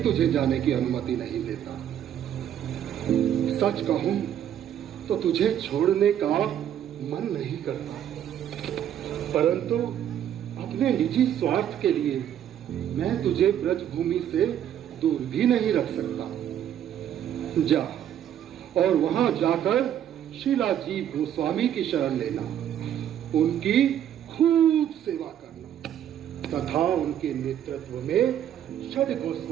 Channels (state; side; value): quieter; left; 10.3 dB